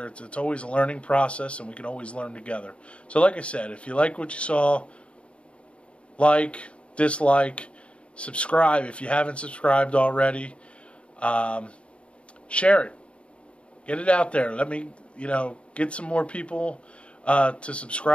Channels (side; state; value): right; late; 0.059 ms